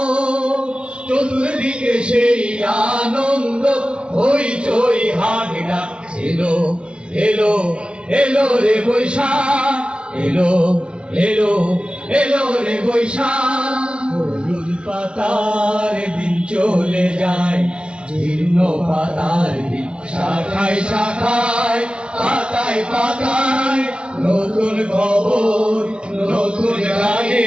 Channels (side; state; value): left; late; 0.057 ms